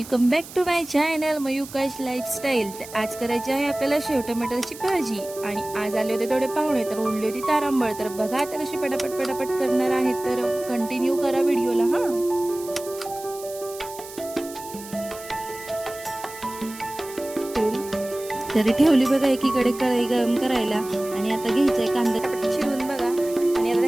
back to my channel Mayukash lifestyle. आज करायची आहे आपल्याला शेव टमाटरची भाजी आणि आज आले होते थोडे पाहुणे तर ओढली होती तारांबळ। तर बघा आता कशी पटापट करणार आहे, तर कंटिन्यू करा व्हिडिओला। हा तरी ठेवली बघा एकीकडे कढई गरम करायला आणि आता घ्यायचंय कांदा चिरून बघा आणि आता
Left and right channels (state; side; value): noise; right; hiss, 15 dB below the sound